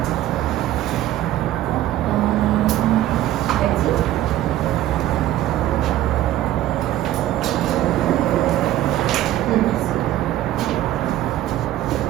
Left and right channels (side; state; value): left; quieter; 13.7 dB